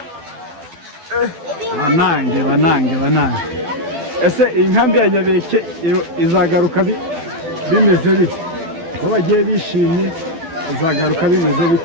Banange. Ese inkambi ya Nyabiheke izagaruka bimeze bite? Ko bagiye bishimye, izagaruka bimeze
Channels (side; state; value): left; late; 12 ms